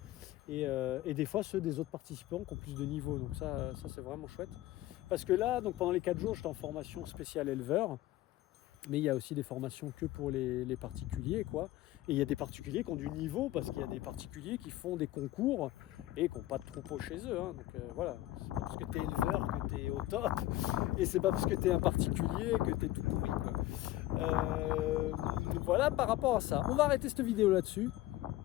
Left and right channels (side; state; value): right; quieter; 15.9 dB